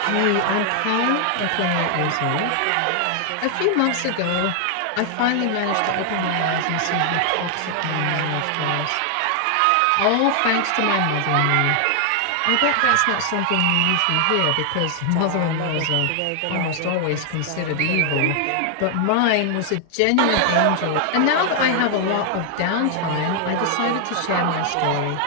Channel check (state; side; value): different; both; correlation 0.00